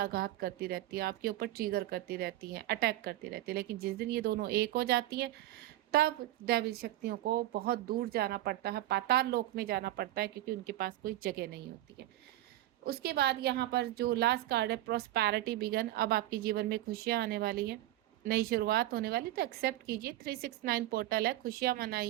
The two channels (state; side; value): quieter; left; 15.4 dB